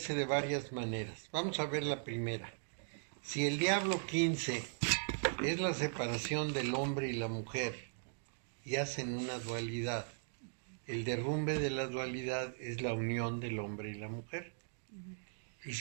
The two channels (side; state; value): left; silent; digital silence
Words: de varias maneras. Vamos a ver la primera. Si el diablo 15 es la separación del hombre y la mujer y hacen una dualidad, el derrumbe de la dualidad es la unión del hombre y la mujer. Y